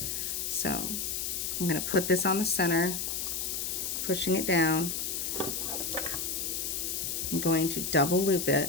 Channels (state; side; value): noise; left; hiss, 2 dB below the sound